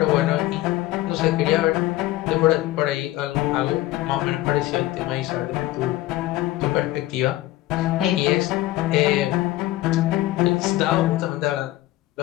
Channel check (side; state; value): right; quieter; 16.3 dB